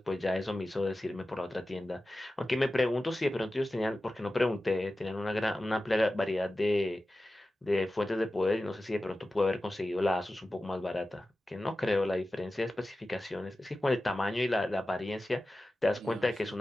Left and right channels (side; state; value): both; normal; correlation 0.94